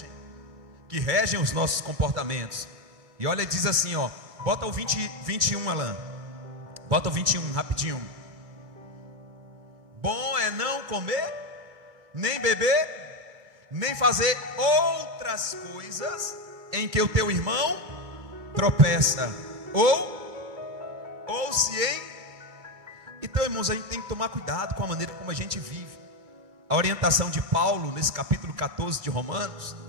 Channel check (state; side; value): late; left; 2.3 ms